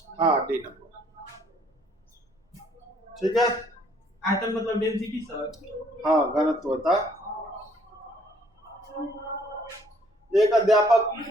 हाँ, डी नंबर ठीक है। आयतन मतलब डेंसिटी सर। हाँ, घनत्व होता है। एक अध्यापक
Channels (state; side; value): normal; both; correlation 0.62